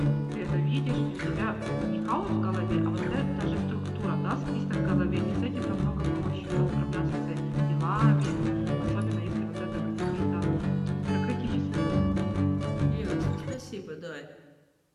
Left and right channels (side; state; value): both; identical; correlation 1.00